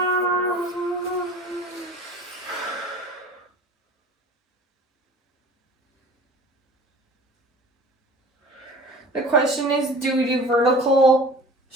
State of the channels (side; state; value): both; normal; correlation 0.43